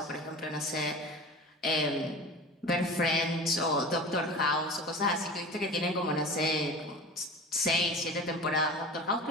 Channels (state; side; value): normal; both; correlation 0.35